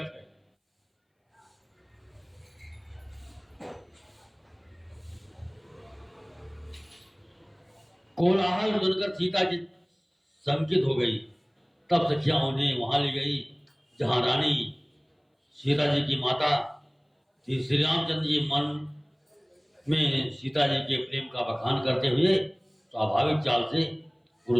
है। कोलाहल सुनकर सीता जी शंकित हो गई। तब सखियां उन्हें वहां ले गई जहां रानी सीता जी की माता श्री रामचंद्र जी मन में सीता जी के प्रेम का बखान करते हुए स्वाभाविक चाल से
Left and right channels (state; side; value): identical; both; correlation 1.00